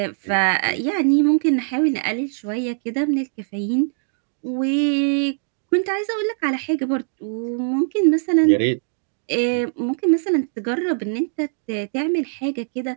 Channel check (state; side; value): silent; left; digital silence